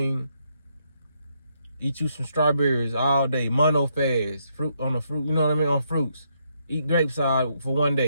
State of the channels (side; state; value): both; inverted; correlation -0.76